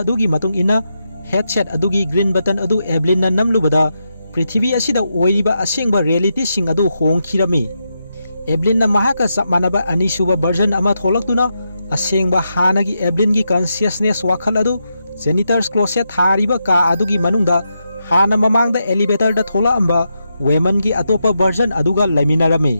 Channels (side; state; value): both; inverted; correlation -0.85